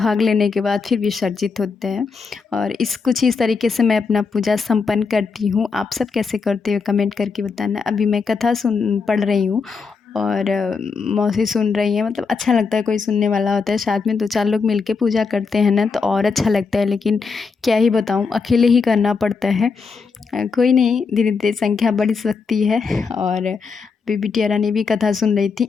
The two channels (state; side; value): quieter; right; 5.0 dB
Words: लेने के बाद फिर विसर्जित होते हैं। और कुछ इस तरीके से मैं अपना पूजा संपन्न करती हूँ। आप सब कैसे करते हो कमेंट करके बताना। अभी मैं कथा पढ़ रही हूँ और मौसी सुन रही हैं। मतलब अच्छा लगता है, कोई सुनने वाला होता है, साथ में 2-4 लोग मिलके पूजा करते हैं ना तो और अच्छा लगता है। लेकिन क्या ही बताऊँ, अकेले ही करना पड़ता है। कोई नहीं, धीरे धीरे संख्या बढ़ सकती है। और अभी बिटिया रानी भी कथा सुन रही थी,